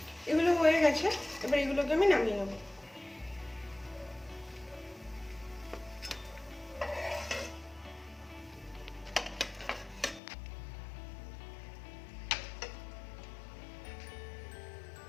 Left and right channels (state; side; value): drops out; right; at 10.2 s